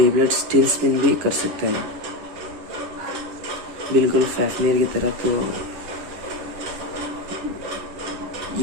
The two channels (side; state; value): left; late; 10 ms